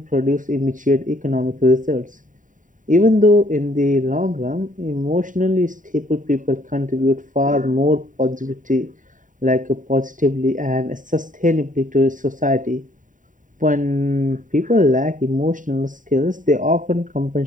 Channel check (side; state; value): left; late; 0.38 ms